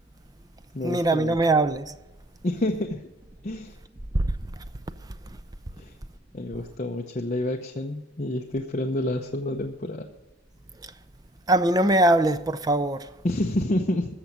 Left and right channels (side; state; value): both; normal; correlation 0.59